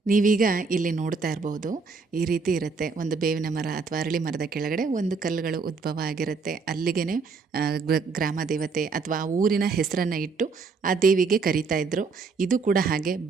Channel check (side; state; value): left; quieter; 4.7 dB